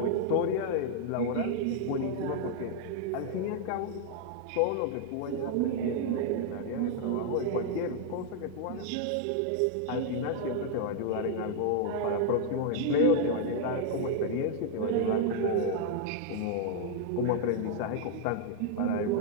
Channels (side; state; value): both; different; correlation 0.00